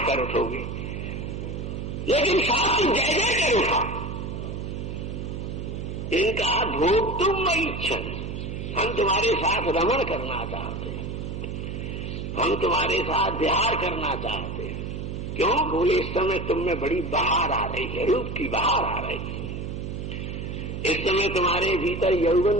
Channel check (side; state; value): right; noise; hum, 6 dB below the sound